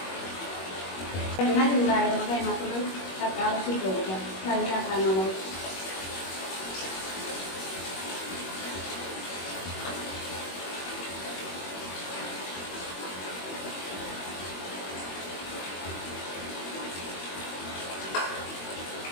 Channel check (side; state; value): right; late; 21 ms